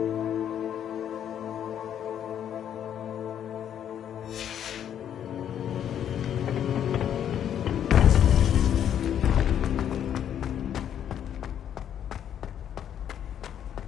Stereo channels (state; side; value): quieter; right; 9.6 dB